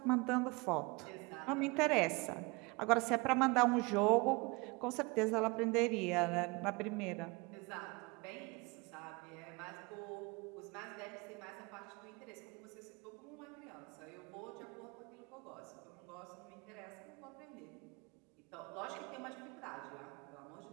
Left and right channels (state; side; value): quieter; left; 26.8 dB